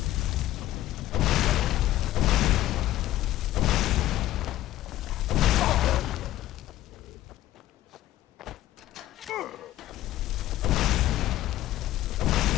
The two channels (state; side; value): quieter; right; 14.4 dB